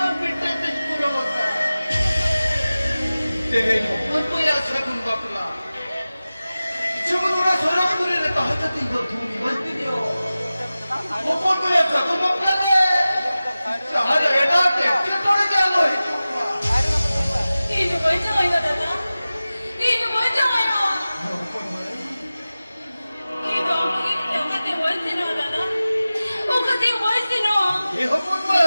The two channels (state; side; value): inverted; both; correlation -0.96